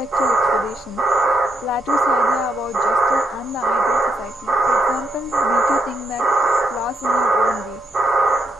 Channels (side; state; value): both; normal; correlation 0.78